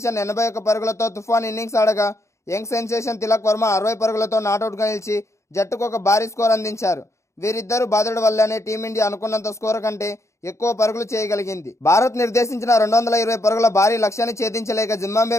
81 పరుగులతో తుఫాన్ ఇన్నింగ్స్ ఆడగా యంగ్ సెన్సేషన్ తిలక్ వర్మ 60 పరుగులతో నాటౌట్గా నిలిచి జట్టుకు ఒక భారీ స్కోర్ అందించారు. వీరిద్దరూ బాధుడు వల్లనే టీమిండియా అనుకున్నంత స్కోర్ కంటే ఎక్కువ పరుగులు చేయగలిగింది. భారత్ నిర్దేశించిన 220 పరుగుల భారీ లక్ష్యాన్ని ఛేదించలేక జింబాబ్వే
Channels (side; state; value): right; late; 0.14 ms